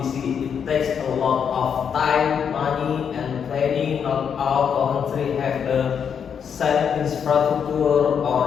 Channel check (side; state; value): right; quieter; 7.4 dB